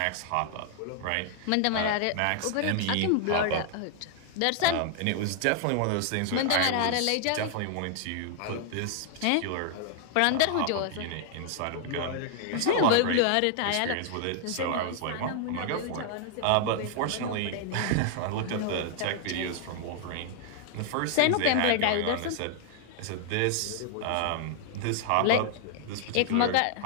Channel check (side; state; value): both; different; correlation 0.00